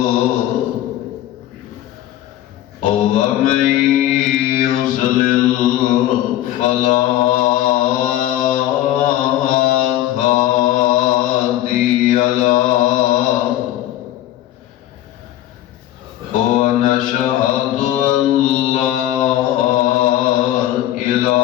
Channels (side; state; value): right; quieter; 13.4 dB